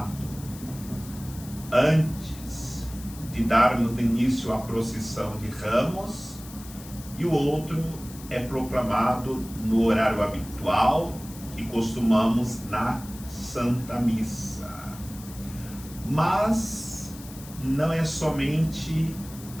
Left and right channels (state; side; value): noise; left; hiss, 17 dB below the sound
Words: antes de darmos início à procissão de Ramos e o outro é proclamado no horário habitual que costumamos na Santa Missa. Mas não é somente